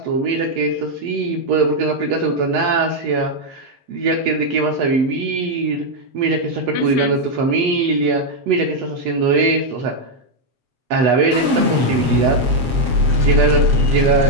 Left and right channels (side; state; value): left; late; 7.6 ms